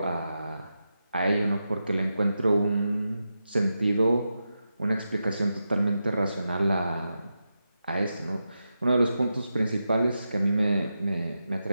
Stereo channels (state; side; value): inverted; both; correlation -0.89